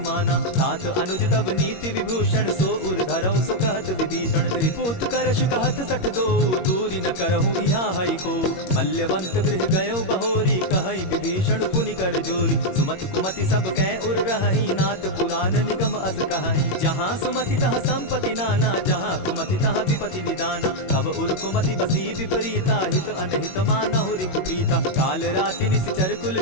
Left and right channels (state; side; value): late; right; 21 ms